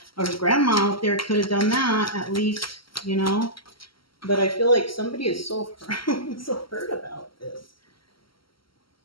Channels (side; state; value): right; late; 0.74 ms